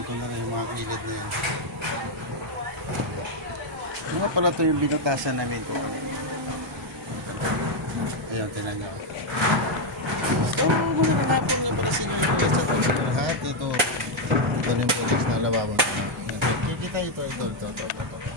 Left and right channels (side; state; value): both; normal; correlation 0.02